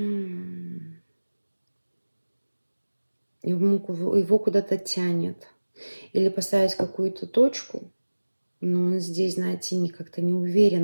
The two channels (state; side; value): inverted; both; correlation -1.00